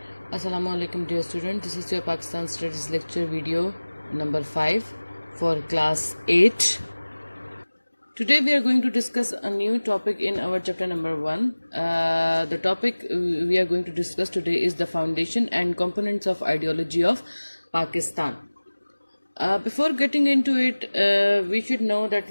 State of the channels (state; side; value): inverted; both; correlation -1.00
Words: Assalamu alaikum dear student. This is your Pakistan Studies lecture video number 5 for class 8. Today we are going to discuss a new topic in our chapter number 1. The topic we are going to discuss today is the foundation and components of ideology of Pakistan. Before getting into it, we should know that